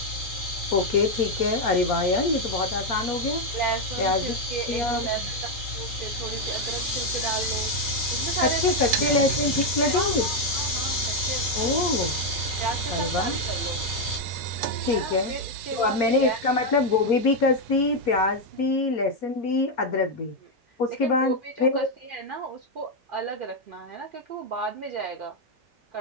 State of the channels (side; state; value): both; normal; correlation 0.03